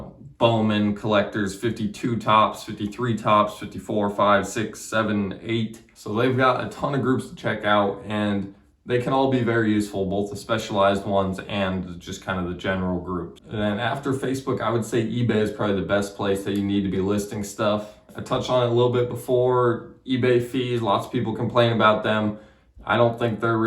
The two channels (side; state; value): both; identical; correlation 1.00